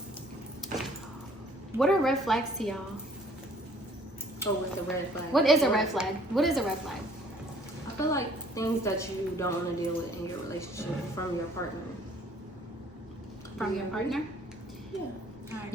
what are red flags to y'all? Oh, with the red flag. What is a red flag? What is a red flag? I feel like things that you don't want to deal with in your relationship from your partner. From your partner? Yeah.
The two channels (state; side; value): normal; both; correlation 0.57